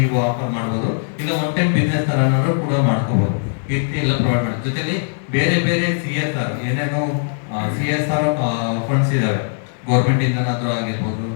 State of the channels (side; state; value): right; silent; digital silence